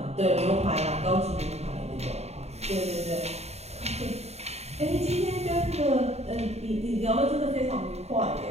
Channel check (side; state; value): left; late; 0.31 ms